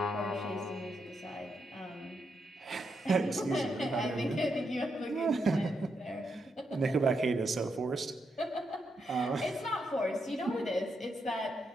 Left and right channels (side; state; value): both; normal; correlation 0.82